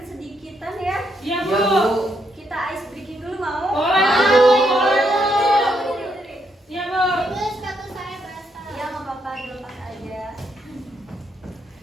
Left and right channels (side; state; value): both; normal; correlation 0.77